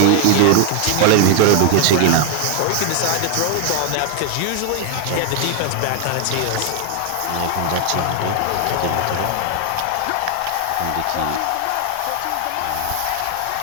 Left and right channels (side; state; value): both; different; correlation 0.00